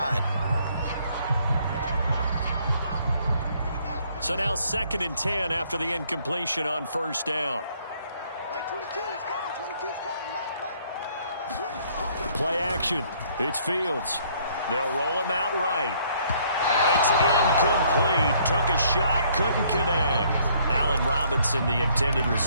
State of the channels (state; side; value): inverted; both; correlation -0.64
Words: So now 2nd and 10 after the incompletion on first down. Play action. It's Fields. They'll roll him out right. And it's incomplete. Took a shot, couldn't connect. Allen Robinson, the intended